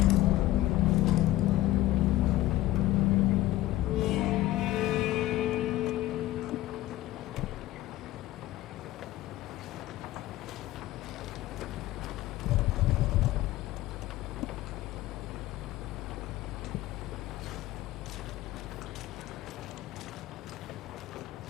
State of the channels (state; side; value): quieter; right; 15.8 dB